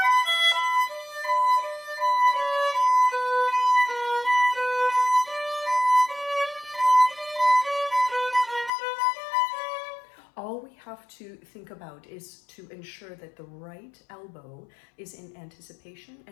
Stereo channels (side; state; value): right; drops out; at 8.7 s